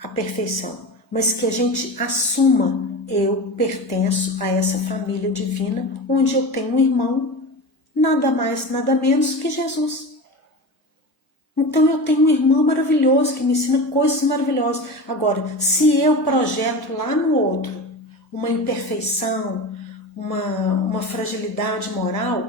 a perfeição, mas que a gente assuma: eu pertenço a essa família divina, onde eu tenho um irmão, nada mais, nada menos que Jesus. Então eu tenho um irmão maravilhoso que me ensina coisas maravilhosas. Agora, se eu projeto lá no outro uma imperfeição, uma fragilidade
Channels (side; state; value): both; normal; correlation 0.28